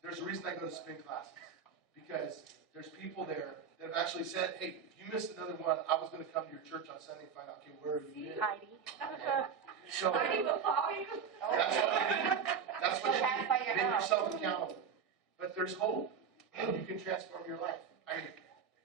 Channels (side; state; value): left; quieter; 6.7 dB